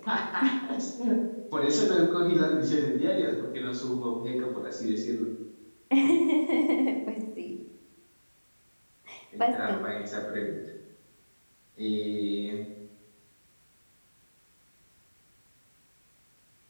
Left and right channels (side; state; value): both; inverted; correlation -1.00